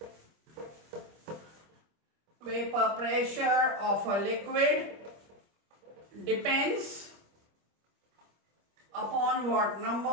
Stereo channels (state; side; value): late; left; 25 ms